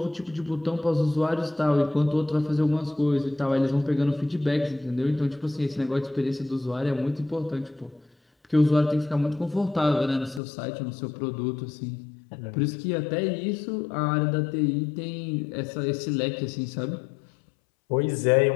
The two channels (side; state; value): right; drops out; at 10.4 s